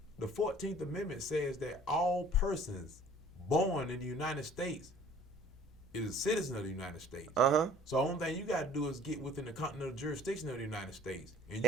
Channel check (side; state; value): both; normal; correlation 0.51